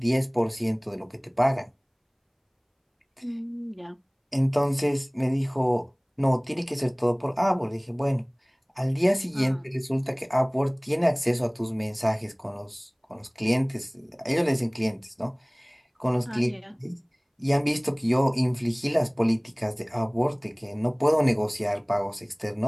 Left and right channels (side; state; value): both; identical; correlation 1.00